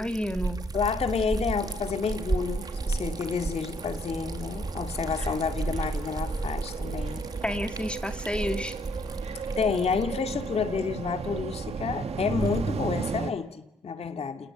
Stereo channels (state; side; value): normal; both; correlation 0.67